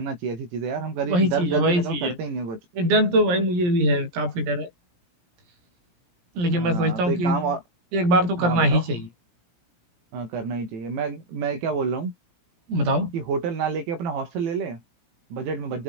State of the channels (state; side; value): late; left; 17 ms